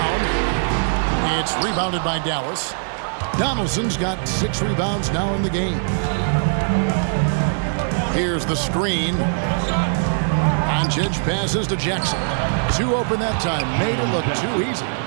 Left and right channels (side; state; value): left; silent; digital silence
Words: It's rebounded by Dallas. Donaldson's got 6 rebounds now in the game. Here's the screen. Doncic passes to Jackson. 2 open that time. Made it look too easy.